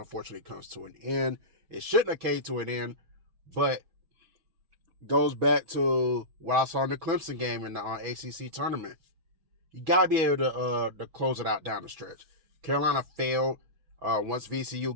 comes to an end. It shouldn't have came to an end, but goes back to what I saw in the Clemson game in the ACC tournament. You got to be able to close it out down the stretch. Carolina failed once VCU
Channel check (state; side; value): late; left; 6.2 ms